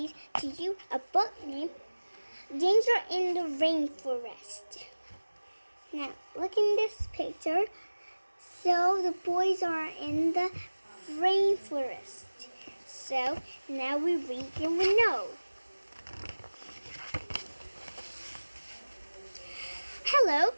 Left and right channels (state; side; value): inverted; both; correlation -1.00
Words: to you a book named Danger in the Rainforest. Now, look in this picture. So the boys are in the rainforest. So now we read and we know. Hello,